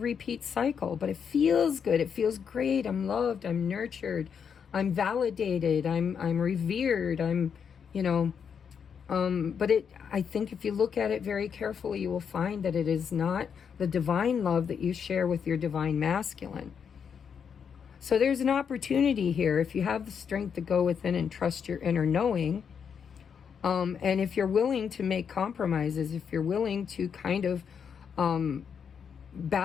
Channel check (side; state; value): right; quieter; 7.0 dB